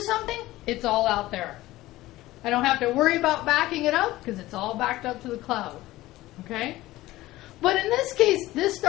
something, it's all out there. I don't have to worry about backing it up, because it's all backed up to the cloud, okay? But in this case, this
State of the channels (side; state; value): right; quieter; 17.2 dB